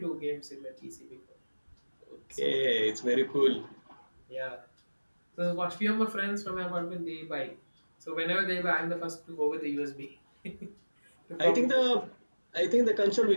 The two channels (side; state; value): both; inverted; correlation -1.00